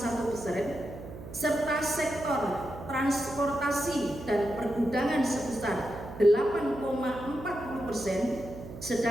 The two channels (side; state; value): right; noise; hum, 12 dB below the sound